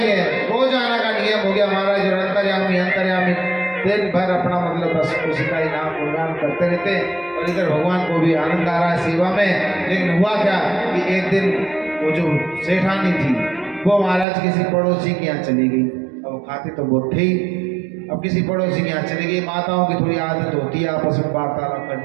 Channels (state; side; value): drops out; left; at 14.2 s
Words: रोज आने का नियम हो गया महाराज, और अंतर्यामी दिन भर अपना मतलब बस उसी का ही नाम गुणगान करते रहते, और इधर भगवान को भी आनंद आ रहा है सेवा में। लेकिन हुआ क्या कि एक दिन वो जो सेठानी थी वो महाराज किसी पड़ोसी के यहाँ चली गई। अब वो खाती तो बहुत थी, अब किसी पड़ोसी के यहाँ चली गई। माताओं की थोड़ी आदत होती है आपस में वार्तालाप